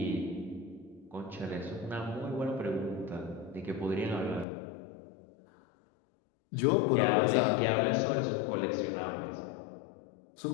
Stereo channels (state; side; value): drops out; right; at 4.5 s